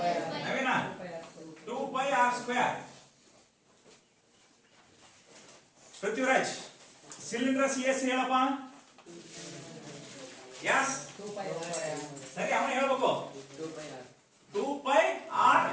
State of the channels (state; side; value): identical; both; correlation 1.00